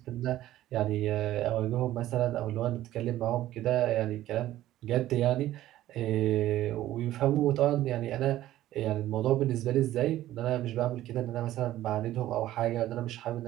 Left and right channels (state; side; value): quieter; left; 14.2 dB